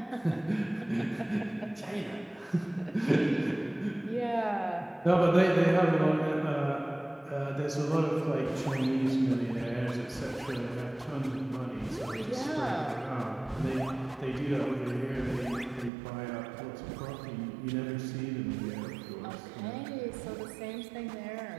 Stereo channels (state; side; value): drops out; left; at 15.9 s